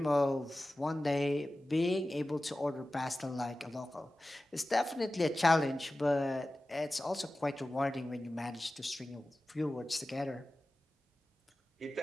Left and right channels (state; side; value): normal; both; correlation 0.95